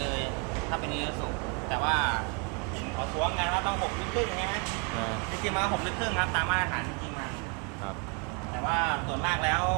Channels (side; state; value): left; quieter; 33.9 dB